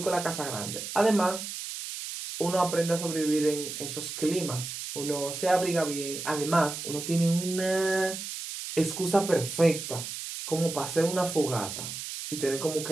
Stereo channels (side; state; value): right; noise; hiss, 7 dB below the sound